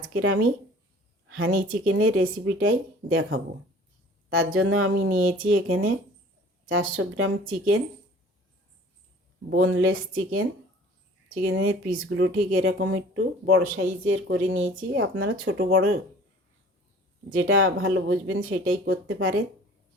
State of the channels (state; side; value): normal; both; correlation 0.48